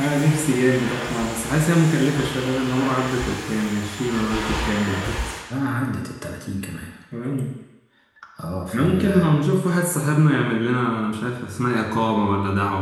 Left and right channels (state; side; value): identical; both; correlation 1.00